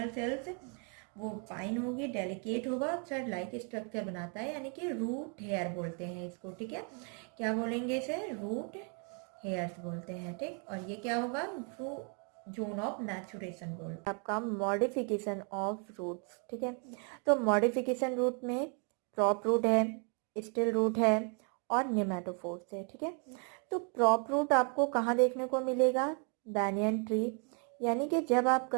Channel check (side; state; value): left; quieter; 39.0 dB